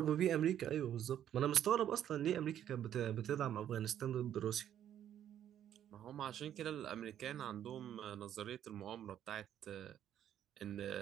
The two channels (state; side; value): quieter; left; 10.5 dB